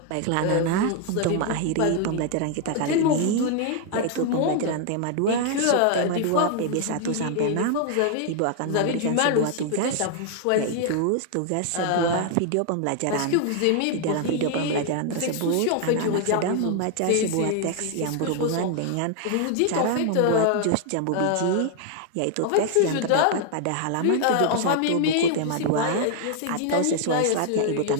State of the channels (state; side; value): different; both; correlation 0.00